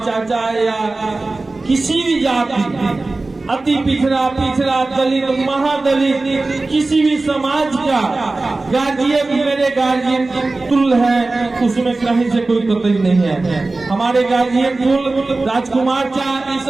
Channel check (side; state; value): left; quieter; 3.3 dB